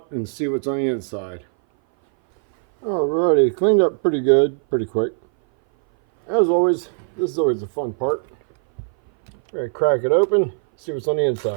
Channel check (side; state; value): left; silent; 59 dB below the other